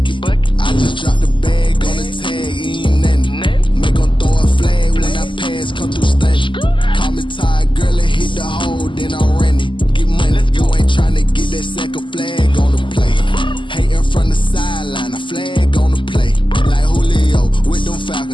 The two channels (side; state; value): right; late; 0.24 ms